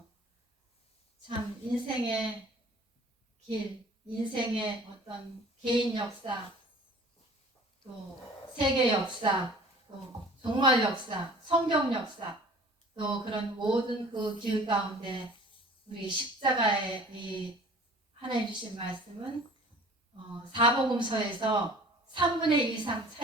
참 인생의 길, 인생의 어떤 개인 역사, 또 세계 역사, 또 종말 역사, 성경 역사, 또 그런 모든 그 길 가운데 우리 십자가의 이 하나님 주신 말씀은 사복음서에서 3분의 2 이상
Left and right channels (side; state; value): both; normal; correlation 0.47